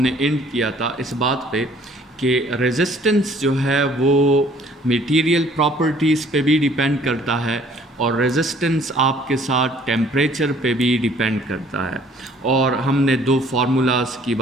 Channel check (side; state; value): both; normal; correlation 0.57